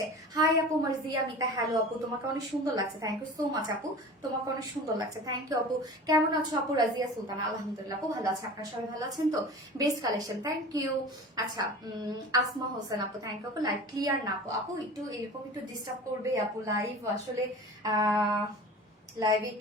হাই আপু, মার্জিয়া মিতা, হ্যালো আপু, তোমাকে অনেক সুন্দর লাগছে, থ্যাংক ইউ সো মাচ আপু। তোমাকে অনেক সুন্দর লাগছে, থ্যাংক ইউ আপু। কেমন আছো আপু? রাজিয়া সুলতান, আলহামদুলিল্লাহ আপু, ভালো আছে। আপনারা সবাই ভালো আছেন তো? Best collection, thank you. আচ্ছা, আসমা হোসেন আপু, থ্যাংক ইউ আপু। লাইভ ক্লিয়ার না আপু? আপু একটু এরকম একটু ডিস্টার্ব করবে আপু, লাইভ আসলে লাইভে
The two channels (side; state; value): both; normal; correlation 0.37